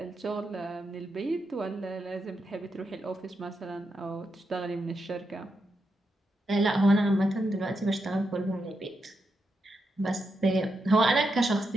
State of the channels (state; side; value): normal; both; correlation 0.85